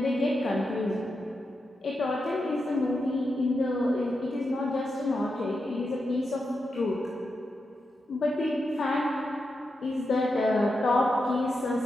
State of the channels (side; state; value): both; normal; correlation 0.87